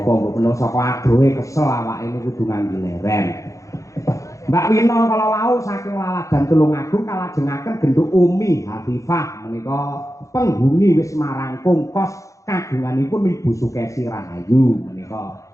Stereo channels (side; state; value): right; late; 0.15 ms